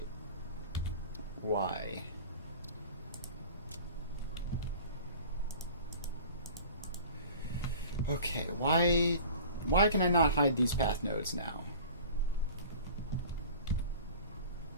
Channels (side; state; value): both; inverted; correlation -0.41